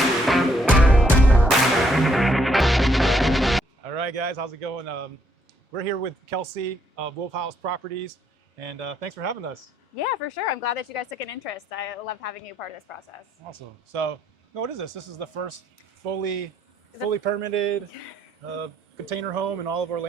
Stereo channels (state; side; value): normal; both; correlation 0.72